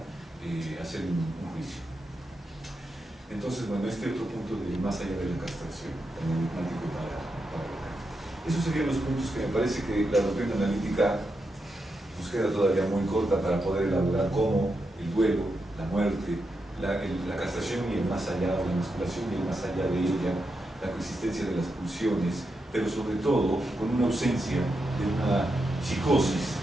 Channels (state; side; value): normal; both; correlation 0.86